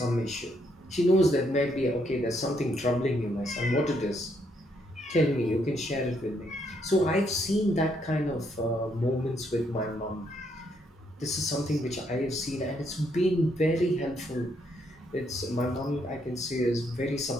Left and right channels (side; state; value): both; normal; correlation 0.74